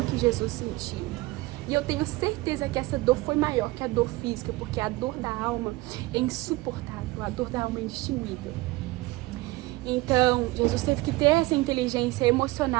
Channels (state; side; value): quieter; left; 20.7 dB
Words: que Jesus sentiu. E eu tenho certeza que essa dor foi maior que a dor física, porque a dor da alma é insuportável, a dor da alma é indistinguível. Então, Jesus teve que ter essa inteligência